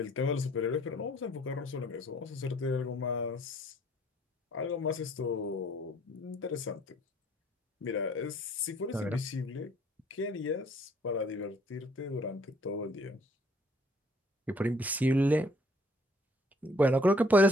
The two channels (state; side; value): normal; both; correlation 0.61